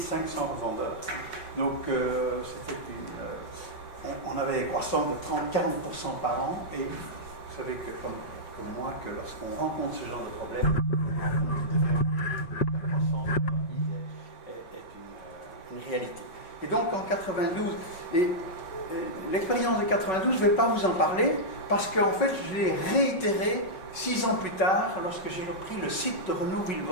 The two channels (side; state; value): right; late; 5.4 ms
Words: revendeurs. Donc, on avait des croissances de 30-40% par an. Et vous savez que, comme moi, que lorsqu'on rencontre ce genre de problème, la croissance rapide est une réalité. Et donc, en 92, l'expérience de 92, je ne vais pas vous en parler, parce qu'en fait, je l'ai réitéré 6 ans plus tard, lorsque j'ai repris le site de Renault